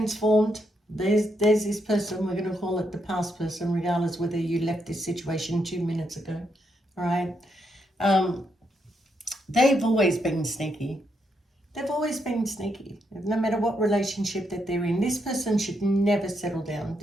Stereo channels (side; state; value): both; normal; correlation 0.79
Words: There's this person, we're going to call it the past person, regardless whether you left this situation 2 minutes ago. All right. They've always been sneaky. They've always been sneaky. No matter what relationship that they're in, this person should never settle down.